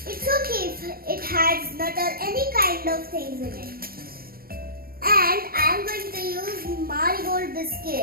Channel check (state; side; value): late; left; 0.43 ms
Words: it's okay if it has nut or any kind of things in it. And I am going to use marigold